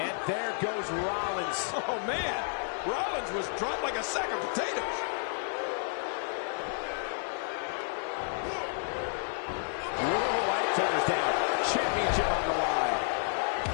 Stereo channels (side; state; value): right; silent; 57 dB below the other